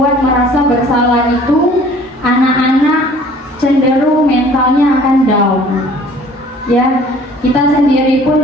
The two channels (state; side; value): normal; both; correlation 0.52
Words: merasa bersalah itu, anak-anak cenderung mentalnya akan down. Ya, kita sendiri pun